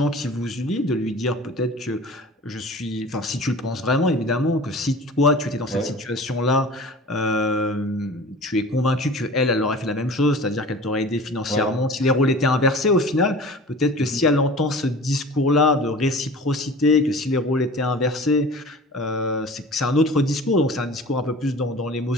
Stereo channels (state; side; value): normal; both; correlation 0.40